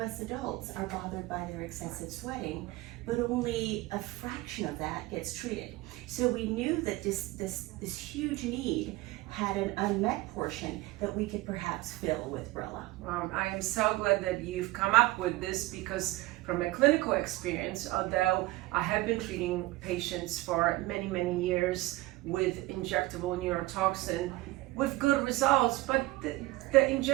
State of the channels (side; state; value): left; quieter; 19.1 dB